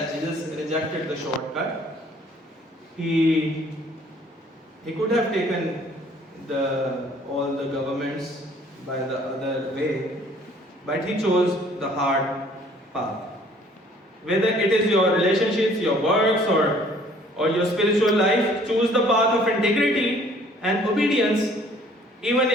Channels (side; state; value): both; normal; correlation 0.57